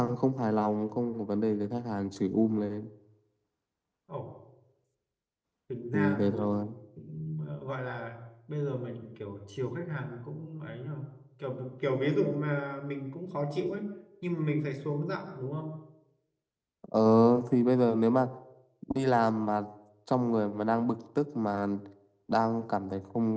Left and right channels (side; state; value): both; identical; correlation 1.00